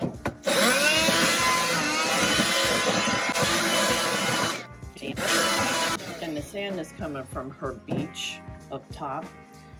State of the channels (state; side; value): identical; both; correlation 1.00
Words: And the sand is coming from her beach up top.